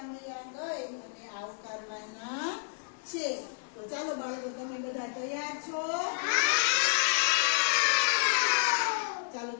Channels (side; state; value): right; silent; 57 dB below the other